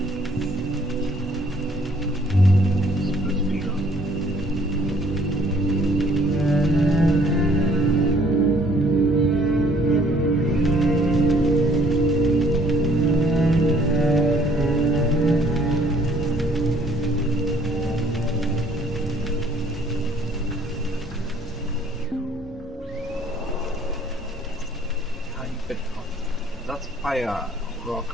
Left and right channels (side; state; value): both; normal; correlation 0.60